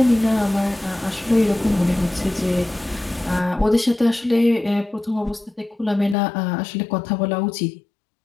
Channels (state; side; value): drops out; right; at 6.2 s